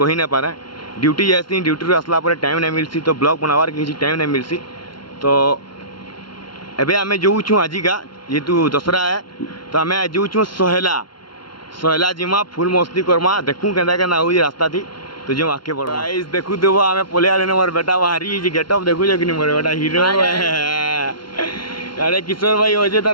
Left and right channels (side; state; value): right; late; 0.72 ms